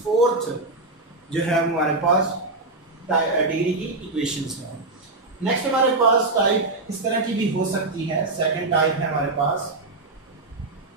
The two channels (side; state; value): left; quieter; 3.2 dB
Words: फोर्थ जो है हमारे पास डिग्री की इक्वेशंस है। नेक्स्ट हमारे पास टाइप इस तरह की भी हो सकती है। सेकंड टाइप है हमारे पास